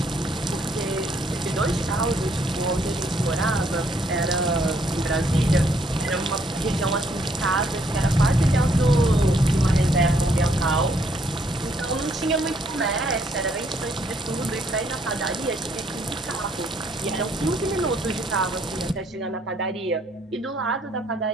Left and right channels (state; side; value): normal; both; correlation 0.69